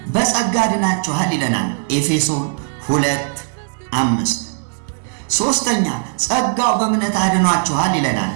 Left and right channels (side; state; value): left; silent; 59 dB below the other